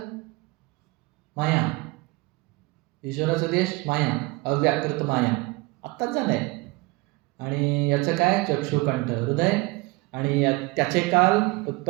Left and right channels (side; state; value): left; quieter; 23.0 dB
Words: माया। ईश्वराचा देश माया, अव्याकृत माया, आत्ताच झालंय। आणि याचं काय, चक्षुकंठ हृदय, आणि त्याचे काल